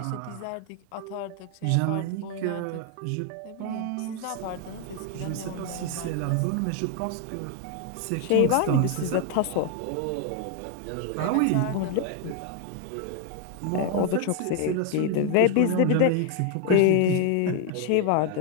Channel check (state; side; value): different; both; correlation 0.00